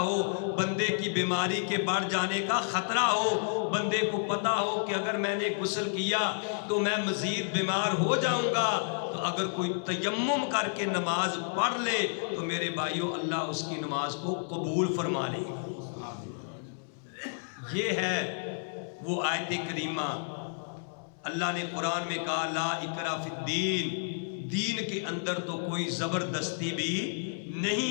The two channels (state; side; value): silent; right; digital silence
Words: بندے کی بیماری کے بڑھ جانے کا خطرہ ہو، بندے کو پتا ہو کہ اگر میں نے غسل کیا تو میں مزید بیمار ہو جاؤں گا، تو اگر کوئی تیمم کر کے نماز پڑھ لے تو میرے بھائیوں اللہ اس کی نماز کو قبول فرما لے گا۔ یہ ہے وہ آیت کریمہ۔ اللہ نے قرآن میں کہا لا اکراہ فی الدین، دین کے اندر تو کوئی زبردستی بھی